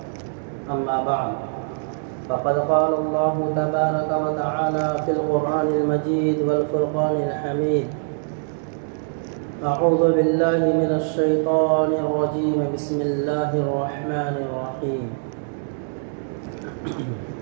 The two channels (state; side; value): silent; left; 63 dB below the other